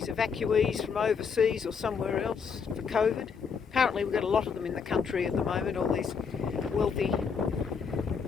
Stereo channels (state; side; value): quieter; right; 6.1 dB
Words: evacuees from overseas or somewhere else for COVID. Apparently we've got a lot of them in the country at the moment, all these wealthy